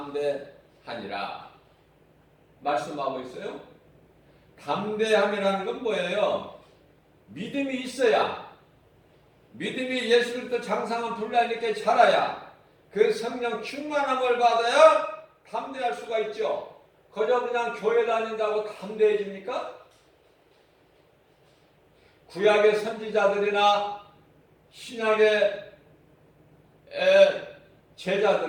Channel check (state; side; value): identical; both; correlation 1.00